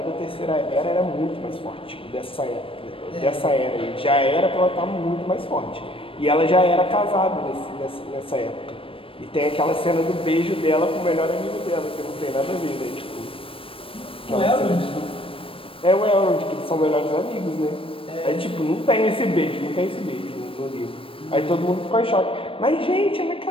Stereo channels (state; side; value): late; right; 0.26 ms